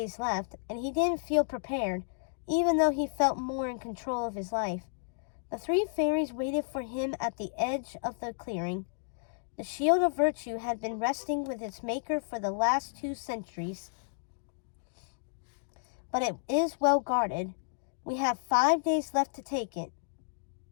left, and he didn't feel prepared, even though he felt more in control of his life. The three fairies waited for him at the edge of the clearing. The Shield of Virtue had been resting with its maker for the last 2 centuries, but it is well guarded. "We have 5 days left to take it,"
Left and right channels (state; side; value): silent; right; digital silence